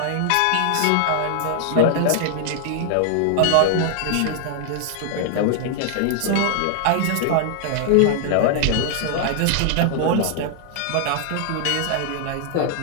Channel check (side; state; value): both; different; correlation 0.00